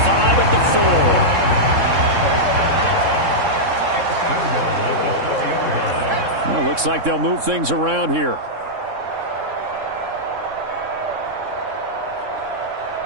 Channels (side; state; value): left; late; 3.6 ms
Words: at the 4. Well, looks like they'll move things around here.